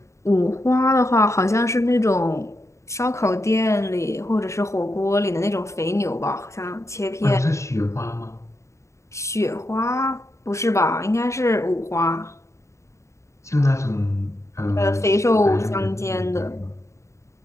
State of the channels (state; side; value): late; right; 0.14 ms